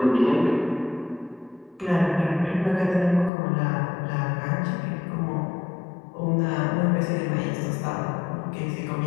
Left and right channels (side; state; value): right; drops out; at 3.3 s